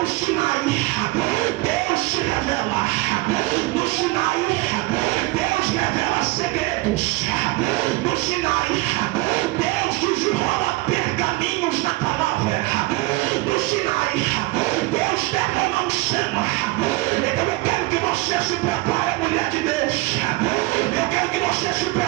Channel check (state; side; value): quieter; left; 21.3 dB